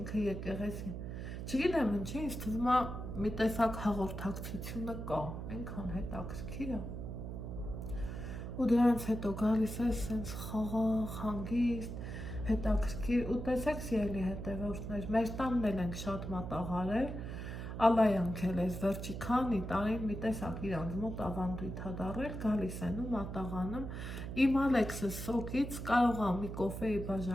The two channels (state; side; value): noise; right; hum, 6 dB below the sound